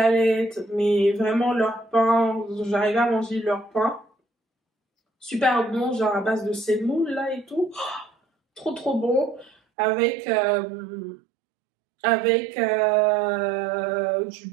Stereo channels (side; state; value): left; drops out; at 9.6 s